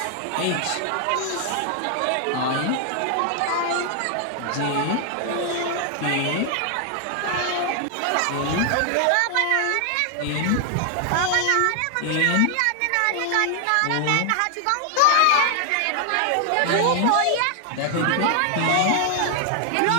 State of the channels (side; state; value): both; different; correlation 0.00